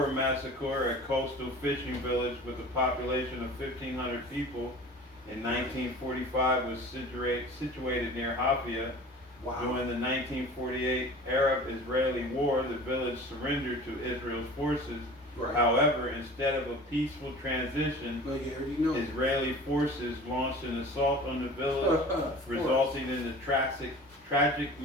massacre, a coastal fishing village with a population of 1,500 people in 1945, was situated near Hafia. Wow. During the 1948 Arab-Israeli War, the village surrendered to Israel's forces. Right. However, instead of a peaceful transition, Israeli forces launched an assault on the village, resulting in the tragic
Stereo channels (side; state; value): both; normal; correlation 0.41